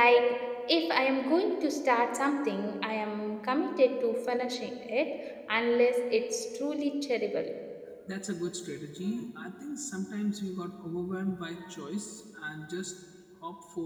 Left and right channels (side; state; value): both; identical; correlation 1.00